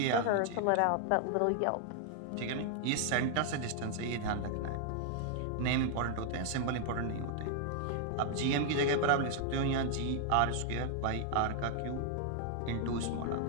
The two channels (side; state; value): both; different; correlation 0.00